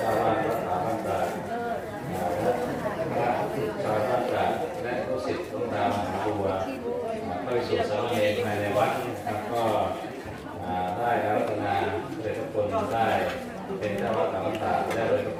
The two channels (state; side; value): identical; both; correlation 1.00